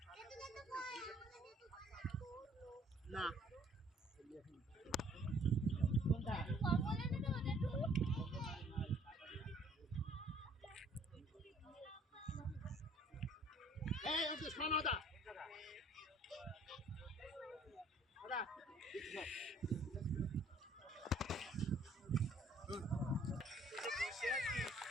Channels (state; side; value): normal; both; correlation 0.58